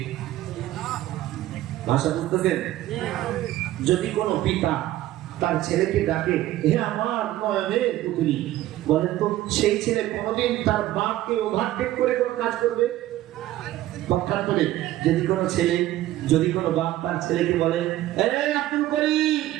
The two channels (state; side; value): quieter; left; 14.8 dB